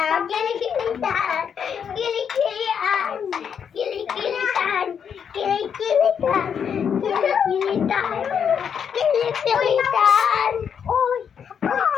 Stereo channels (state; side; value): quieter; right; 7.5 dB